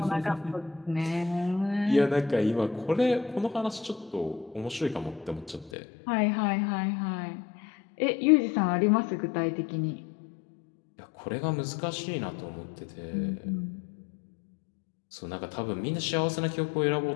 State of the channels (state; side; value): drops out; right; at 5.7 s